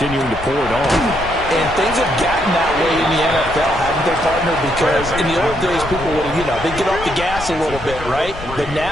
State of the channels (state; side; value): noise; left; rumble, 11 dB below the sound